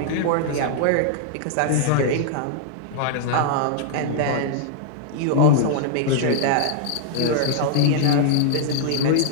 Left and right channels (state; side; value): different; both; correlation -0.01